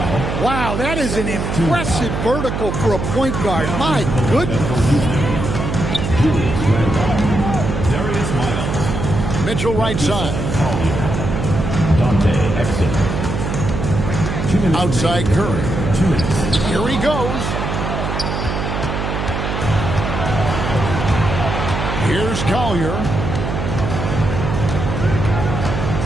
Wow, that is an impressive vertical for a point guard. My goodness. Mitchell right side. Dante Exum. Outside Curry. Here he goes. Here's Collier.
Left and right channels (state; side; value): noise; right; hum, 3 dB below the sound